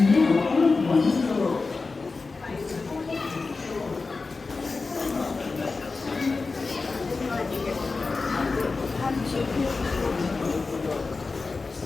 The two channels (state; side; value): quieter; right; 4.0 dB